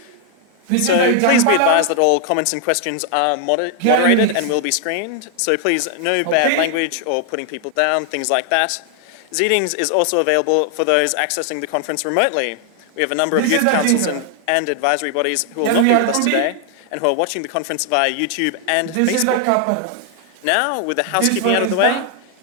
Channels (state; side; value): different; both; correlation 0.00